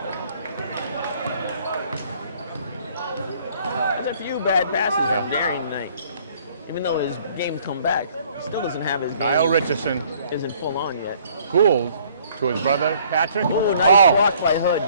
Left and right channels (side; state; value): both; inverted; correlation -0.59